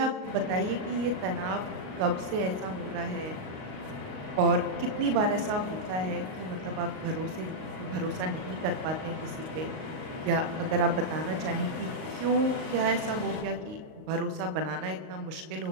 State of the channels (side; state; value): left; late; 38 ms